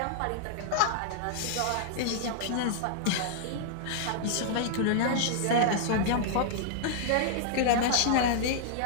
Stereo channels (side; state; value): both; different; correlation -0.01